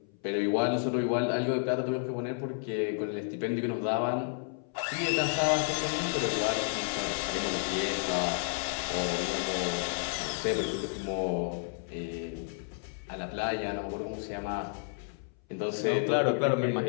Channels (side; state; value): right; silent; 57 dB below the other